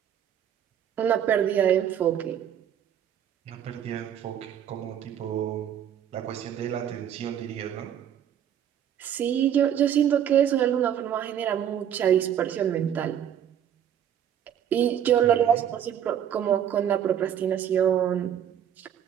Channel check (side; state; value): left; quieter; 9.6 dB